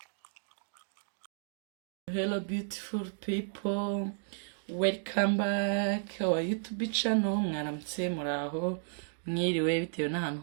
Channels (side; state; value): left; silent; digital silence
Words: Hello beautiful people, welcome back our YouTube channel. Mwaramutse, muraho, mwiriwe bitewe n'ahantu